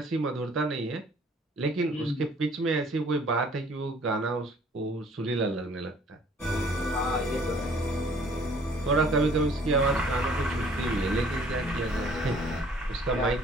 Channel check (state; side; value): normal; both; correlation 0.56